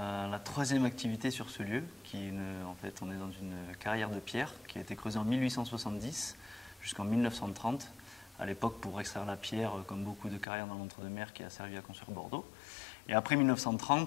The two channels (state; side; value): drops out; right; at 10.5 s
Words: troisième activité sur ce lieu, en fait, on est dans une carrière de pierre qui a été creusée en 1870 jusqu'en 1930, à l'époque pour extraire la pierre, comme beaucoup de carrières dans l'entre-deux-mer qui a servi à construire Bordeaux. Et après